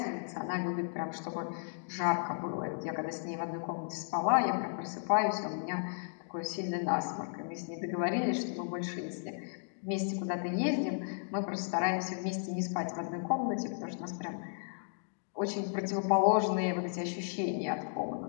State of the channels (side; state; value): right; silent; digital silence